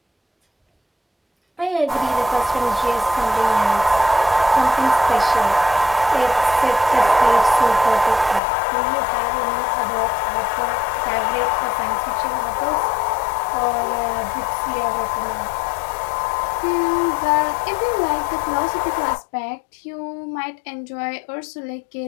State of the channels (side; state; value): right; drops out; at 8.4 s